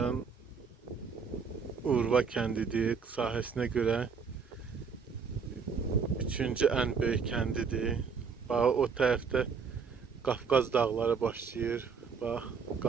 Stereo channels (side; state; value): left; quieter; 5.8 dB